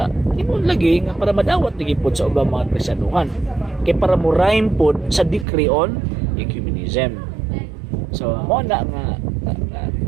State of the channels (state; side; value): drops out; left; at 5.5 s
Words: imong lagi nga para madawat lagi pod sa ubang mga Kristiyanuhan. Kay para mo rhyme pod sa decree on ecumenism. So mo na nga